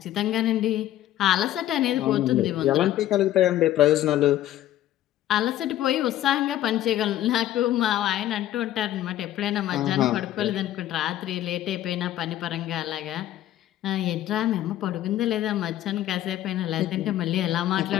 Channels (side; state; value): right; quieter; 13.1 dB